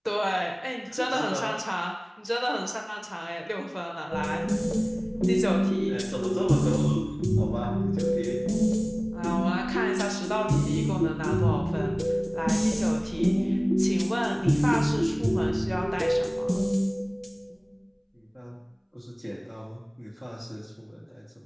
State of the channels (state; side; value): identical; both; correlation 1.00